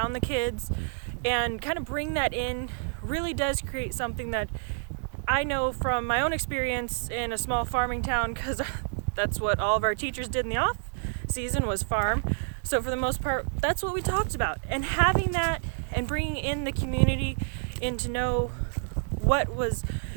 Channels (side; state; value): left; silent; digital silence